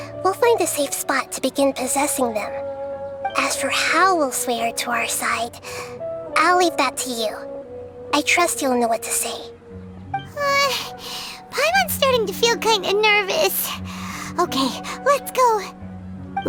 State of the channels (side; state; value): both; identical; correlation 1.00